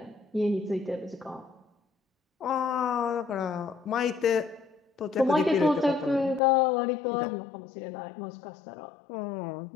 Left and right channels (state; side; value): drops out; right; at 6.4 s